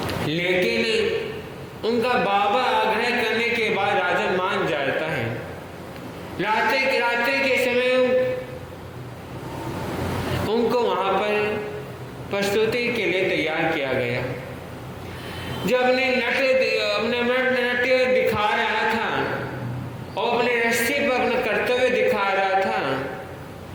लेकिन उनका बाबा आग्रह करने के बाद राजा मान जाता है। रात्रि के समय उनको वहां पर प्रस्तुति के लिए तैयार किया गया। जब अपने नृत्य दिखा रहा था और अपने रस्सी पर अपना कर्तव्य दिखा रहा था,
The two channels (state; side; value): identical; both; correlation 1.00